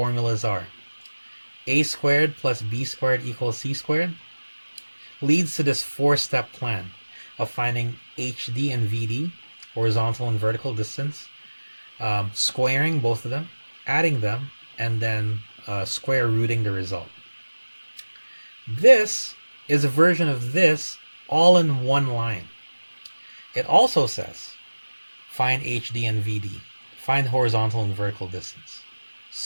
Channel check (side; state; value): both; inverted; correlation -1.00